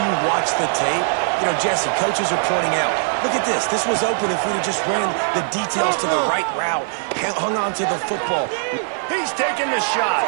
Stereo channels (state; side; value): silent; left; 65 dB below the other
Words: you watch the tape, you know, Jesse, coaches are pointing out, look at this. This was open if we'd have just ran the details to the right route, hung on to the football. He's taking the shot.